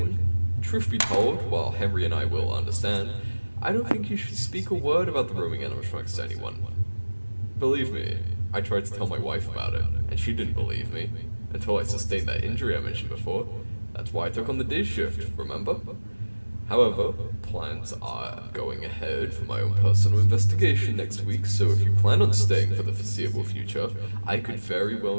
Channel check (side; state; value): both; inverted; correlation -1.00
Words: Truth be told, while Henry and I will understand, I don't think you should speak a word about the roaming animatronics to anyone. Believe me, I tried to tell my wife about it, and she didn't believe me, until I sustained that injury I mentioned before. That's why I took on the day shift, remember? However, plans are going ahead for my own personal investigation next week, so if you plan on staying for the foreseeable future, I could very